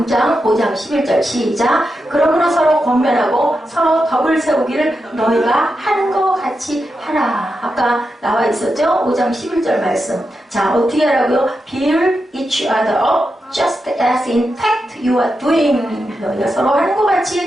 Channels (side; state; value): both; normal; correlation 0.88